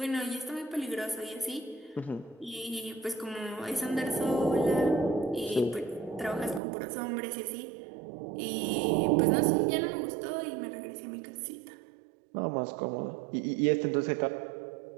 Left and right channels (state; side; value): drops out; left; at 6.6 s